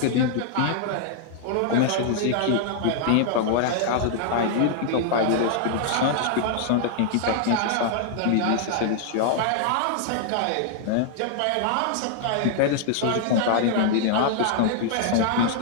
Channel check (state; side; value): different; both; correlation -0.01